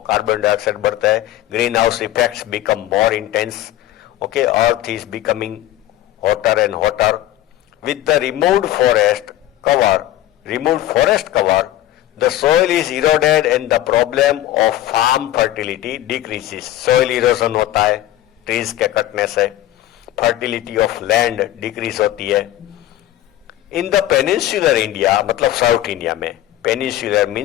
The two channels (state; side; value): quieter; right; 13.7 dB